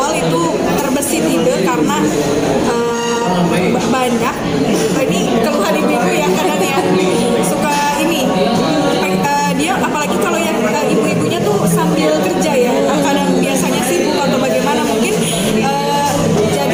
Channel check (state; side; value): identical; both; correlation 1.00